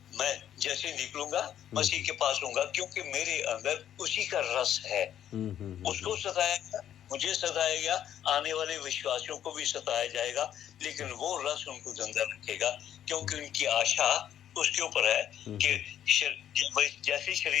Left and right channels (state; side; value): quieter; right; 10.5 dB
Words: मैं जैसे निकलूंगा मसीह के पास होऊंगा, क्योंकि मेरे अंदर उसी का रस है। उसको सताया, मुझे सताया गया, आने वाले विश्वासियों को भी सताया जाएगा, लेकिन वो रस उनको जिंदा रखेगा, क्योंकि उनकी आशा उसके ऊपर है कि जैसे